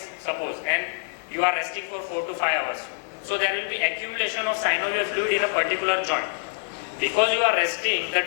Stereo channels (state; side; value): silent; right; digital silence